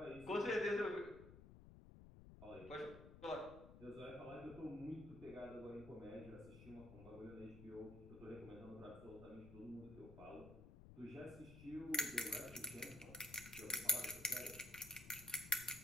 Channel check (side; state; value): left; noise; rumble, 15 dB below the sound